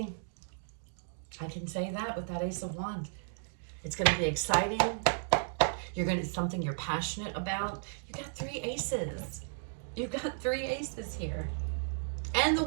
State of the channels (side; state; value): left; silent; digital silence